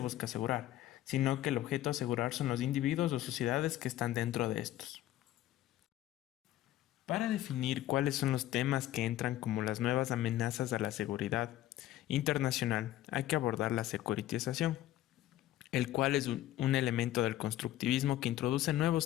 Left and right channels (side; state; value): right; quieter; 14.0 dB